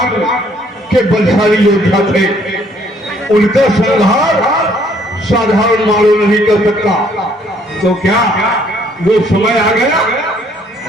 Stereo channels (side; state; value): both; normal; correlation 0.64